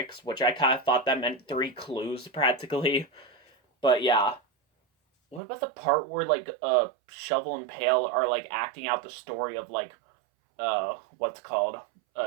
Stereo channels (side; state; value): left; drops out; at 5.4 s